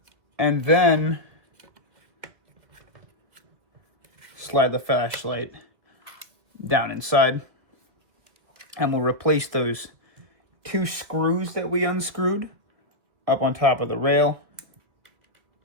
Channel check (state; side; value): late; left; 2.4 ms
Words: And then slide the flashlight down inside. And we'll replace those 2 screws that we unscrewed up on top of the rail.